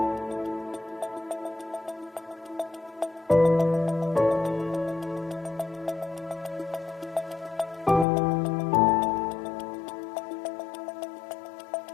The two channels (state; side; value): drops out; right; at 8.1 s